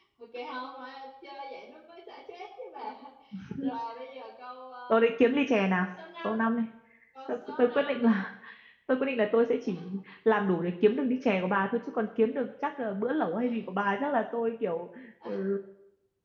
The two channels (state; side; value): identical; both; correlation 1.00